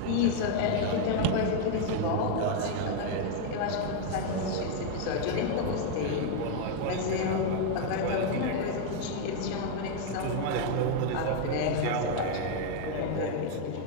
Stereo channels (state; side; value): different; both; correlation 0.00